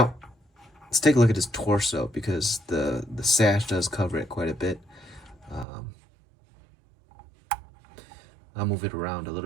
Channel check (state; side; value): drops out; left; at 5.7 s